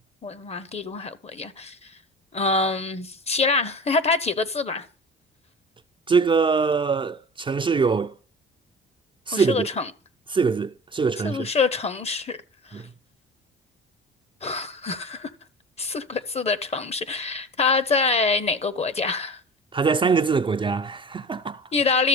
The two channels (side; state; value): both; normal; correlation 0.36